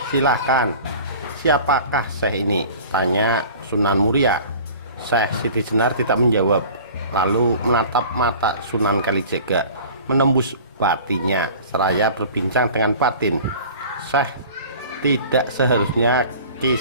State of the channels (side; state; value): both; inverted; correlation -0.43